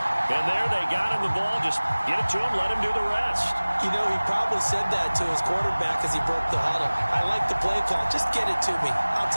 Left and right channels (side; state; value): both; inverted; correlation -1.00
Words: And there they got him the ball. Just get it to him, let him do the rest. You know, he probably said that to his quarterback as he broke the huddle. I like the play call. Just get it to me. I'll